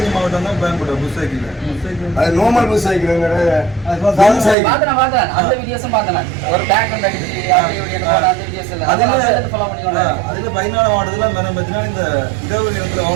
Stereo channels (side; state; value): left; drops out; at 4.5 s